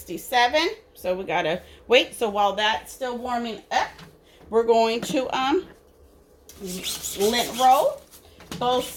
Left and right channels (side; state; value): both; identical; correlation 1.00